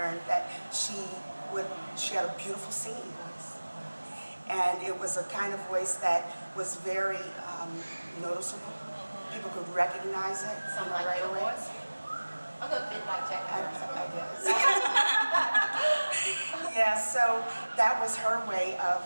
that she had a beautiful singing voice. And it was a kind of voice that was very noticeable. People could recognize it right your away. voice? A little bit like Jack. I guess. Yeah, so that was her way of,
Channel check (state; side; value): inverted; both; correlation -1.00